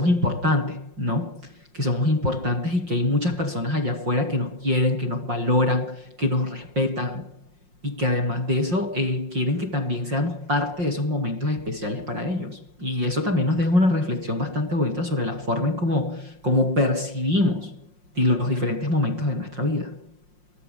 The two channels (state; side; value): late; left; 5.6 ms